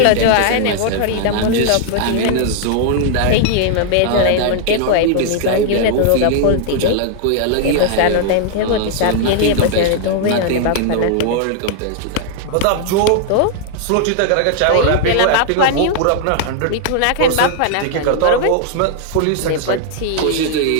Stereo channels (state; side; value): different; both; correlation 0.00